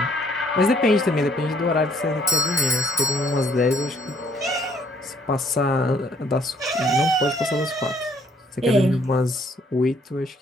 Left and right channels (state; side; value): normal; both; correlation 0.64